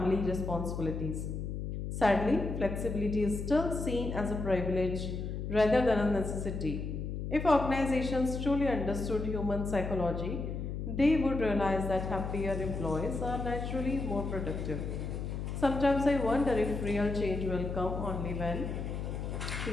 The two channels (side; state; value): left; noise; hum, 4 dB below the sound